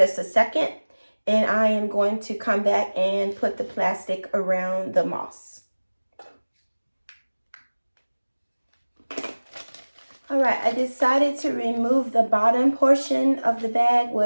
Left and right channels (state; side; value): inverted; both; correlation -1.00